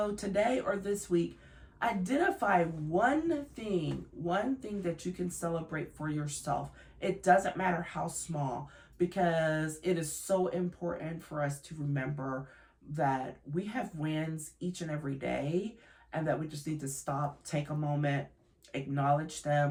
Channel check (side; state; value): both; identical; correlation 1.00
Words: today or this week, identify one thing that you can celebrate for yourself. It doesn't matter how small, because it is so important for us to remember that we have wins each and every day, and that we just need to stop, take a moment, acknowledge